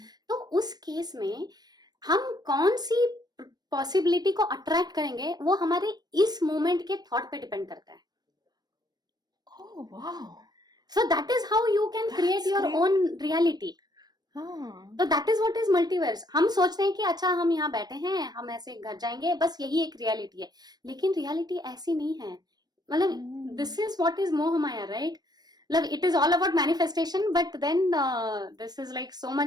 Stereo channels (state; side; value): late; left; 0.19 ms